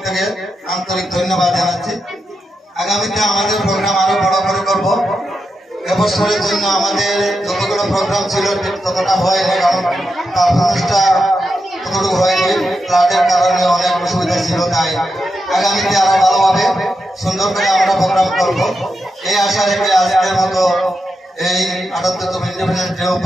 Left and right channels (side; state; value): both; normal; correlation 0.87